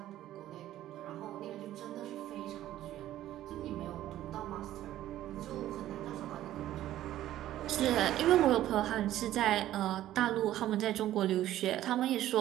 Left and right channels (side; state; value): left; quieter; 13.4 dB